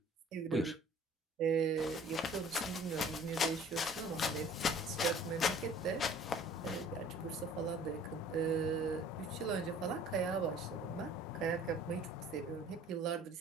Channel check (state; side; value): normal; both; correlation 0.51